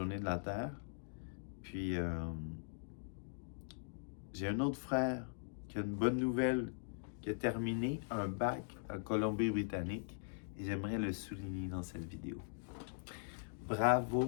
de la Terre. Puis J'ai un autre frère qui a une bonne nouvelle, qui a terminé un bac en Colombie-Britannique et j'aimerais le souligner dans cette vidéo.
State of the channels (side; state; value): right; silent; digital silence